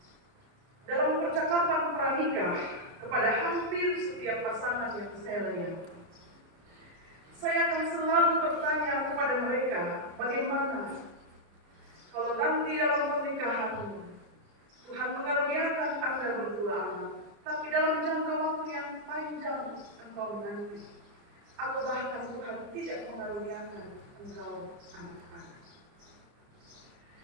dalam percakapan pranikah kepada hampir setiap pasangan yang saya layani, saya akan selalu bertanya kepada mereka, bagaimana kalau nanti dalam pernikahan Tuhan mengaruniakan Anda berdua anak, tapi dalam jangka waktu yang panjang engkau menanti, atau bahkan Tuhan tidak mengaruniakan engkau anak-anak.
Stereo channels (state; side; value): late; left; 29 ms